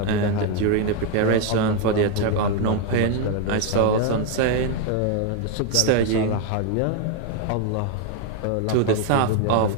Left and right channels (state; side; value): different; both; correlation 0.01